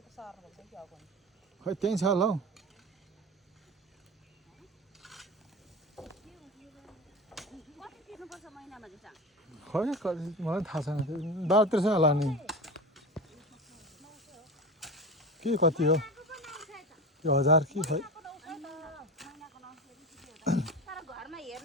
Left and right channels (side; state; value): both; normal; correlation 0.28